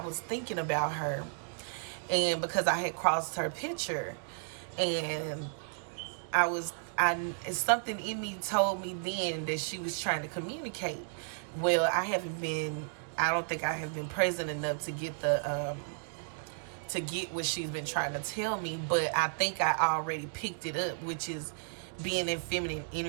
thinking about her, and because I had crossed her picture, and something in me told me then that she was trying to communicate. Well, I don't think I have been present enough to get to get what she's been trying to tell me, but I think I already picked it up, which is being in feminine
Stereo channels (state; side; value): silent; left; digital silence